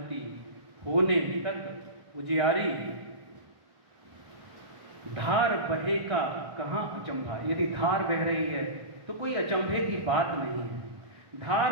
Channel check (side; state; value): left; late; 1.1 ms